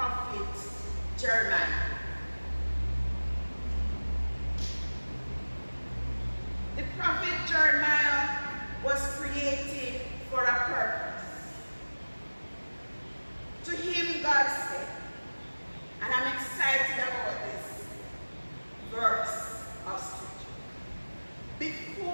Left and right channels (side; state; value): both; inverted; correlation -1.00